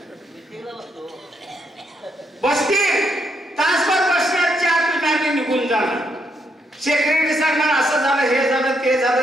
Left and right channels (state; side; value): normal; both; correlation 0.77